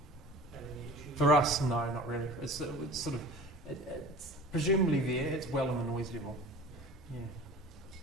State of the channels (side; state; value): both; normal; correlation 0.40